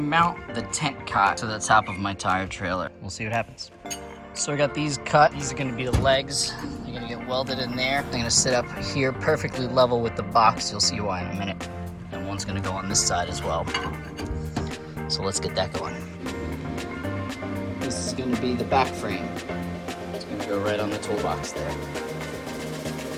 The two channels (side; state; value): both; identical; correlation 1.00